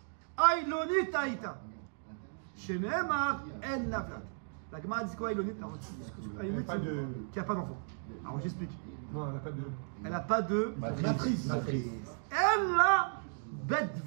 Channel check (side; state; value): left; silent; digital silence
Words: Aïlonit Aïta. Shenemar El Navlad. La Gemara dit quoi Aïlonit? Aïlonit, c'est qui n'a pas d'enfant. Alors j'explique. Non, elle n'a pas de. Elle n'a pas de. Matrice. Elle a Bet